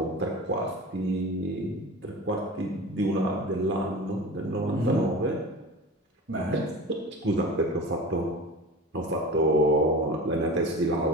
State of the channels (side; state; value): both; normal; correlation 0.34